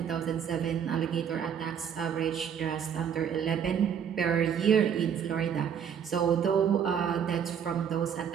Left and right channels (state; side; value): quieter; left; 8.1 dB